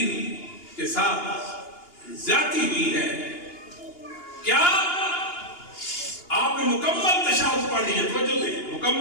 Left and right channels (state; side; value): late; right; 2.9 ms